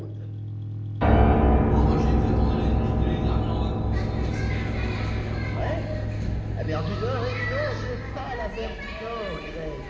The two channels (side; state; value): both; identical; correlation 1.00